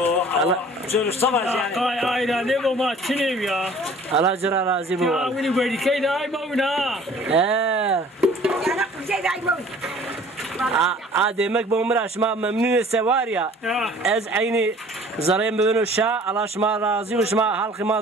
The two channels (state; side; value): normal; both; correlation 0.50